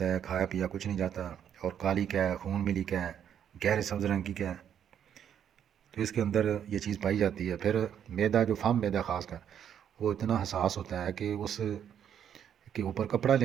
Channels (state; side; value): quieter; left; 9.1 dB